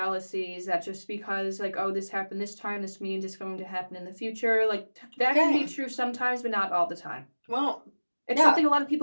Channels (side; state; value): both; inverted; correlation -1.00